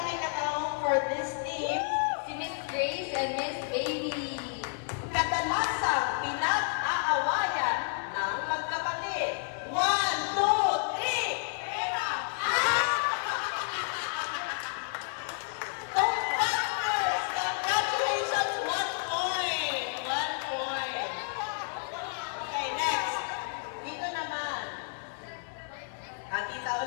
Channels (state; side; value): silent; right; 57 dB below the other